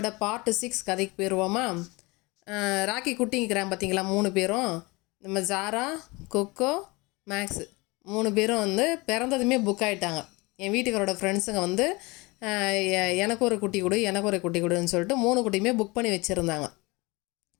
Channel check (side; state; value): right; quieter; 24.7 dB